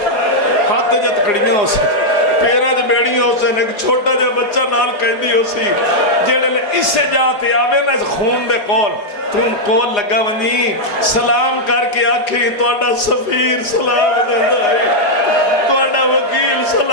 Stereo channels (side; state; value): right; late; 4.9 ms